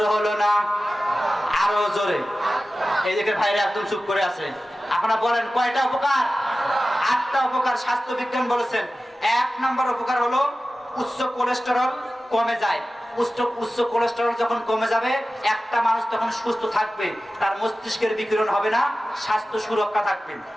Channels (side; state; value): both; normal; correlation 0.95